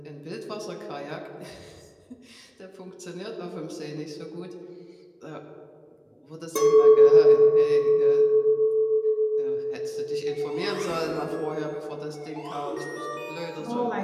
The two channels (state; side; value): identical; both; correlation 1.00